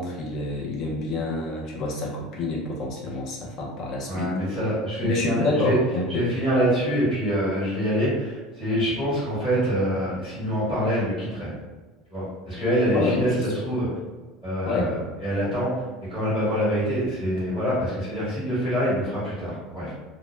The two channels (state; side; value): normal; both; correlation 0.40